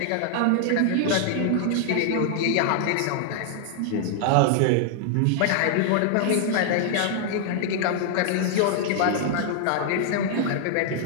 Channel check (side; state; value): both; different; correlation -0.01